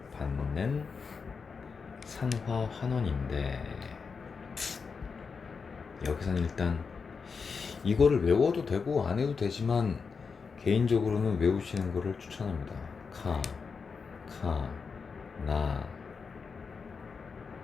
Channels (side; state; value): right; quieter; 5.3 dB